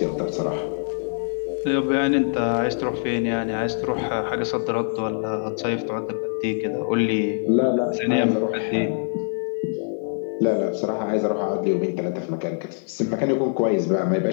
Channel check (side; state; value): right; silent; digital silence